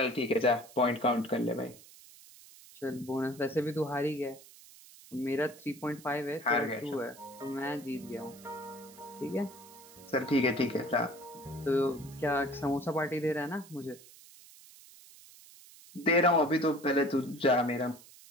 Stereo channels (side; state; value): right; noise; hiss, 21 dB below the sound